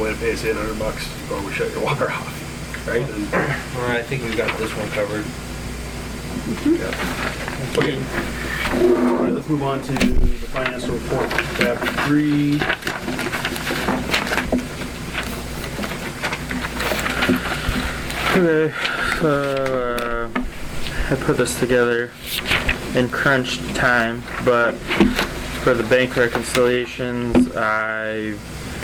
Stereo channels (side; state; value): both; identical; correlation 1.00